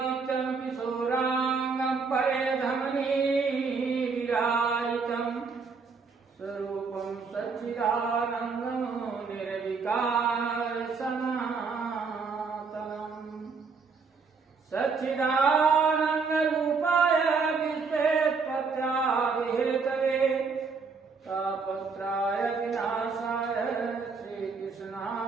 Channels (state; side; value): quieter; left; 4.9 dB